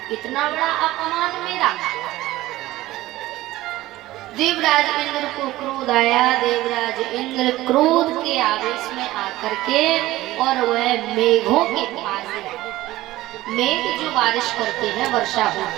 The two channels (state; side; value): quieter; left; 16.8 dB